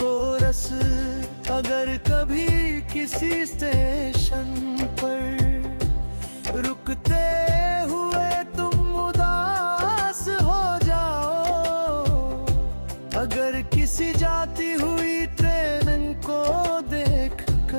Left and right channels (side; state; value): both; inverted; correlation -1.00